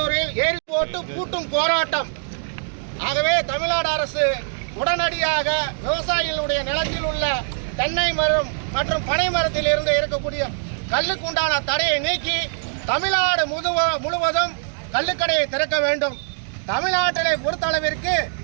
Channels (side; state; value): left; silent; digital silence